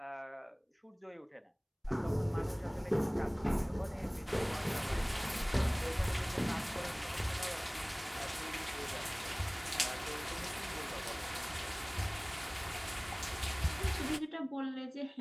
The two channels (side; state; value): both; identical; correlation 1.00